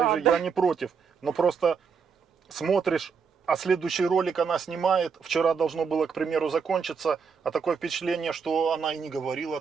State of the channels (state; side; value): quieter; left; 6.0 dB